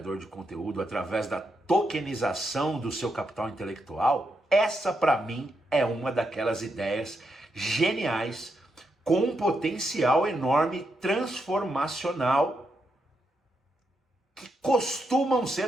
de conteúdo através da tokenização do seu capital intelectual, essa para mim é uma daquelas ideias geniais com um potencial enorme transformacional que costumam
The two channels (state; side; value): normal; both; correlation 0.82